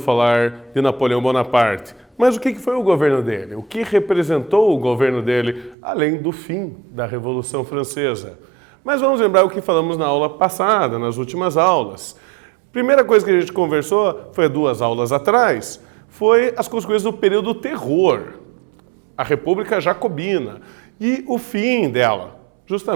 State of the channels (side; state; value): left; drops out; at 5.8 s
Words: de Napoleão Bonaparte, mas o que foi o governo dele? O que representou o governo dele, além do fim da Revolução Francesa? Mas vamos lembrar o que falamos na aula passada, nas últimas aulas. Primeira coisa que a gente conversou, foi 2 aulas atrás, foi as consequências do período do terror, a República Jacobina e o fim dela,